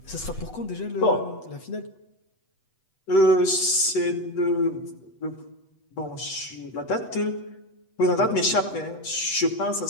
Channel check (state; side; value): late; right; 8.1 ms